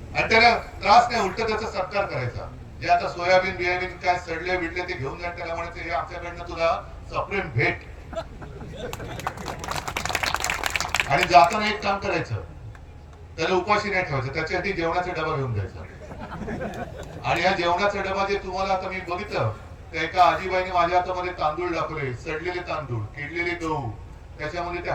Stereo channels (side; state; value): both; identical; correlation 1.00